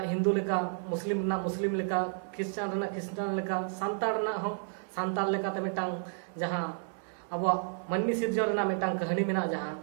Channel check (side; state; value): left; silent; digital silence